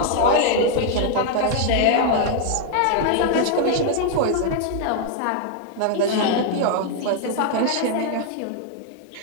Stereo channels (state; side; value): different; both; correlation 0.00